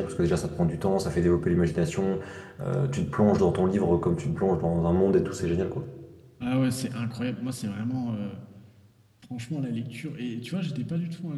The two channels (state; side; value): identical; both; correlation 1.00